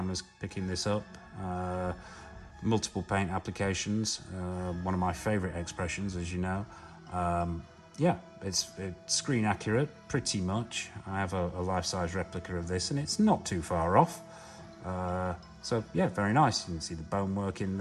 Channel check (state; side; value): identical; both; correlation 1.00